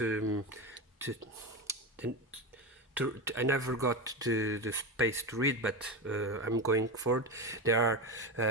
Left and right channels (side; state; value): both; normal; correlation 0.18